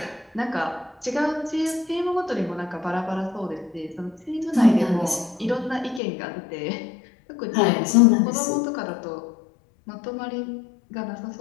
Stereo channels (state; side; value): drops out; right; at 6.0 s